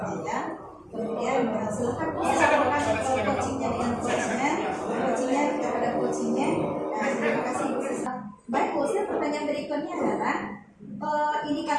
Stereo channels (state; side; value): identical; both; correlation 1.00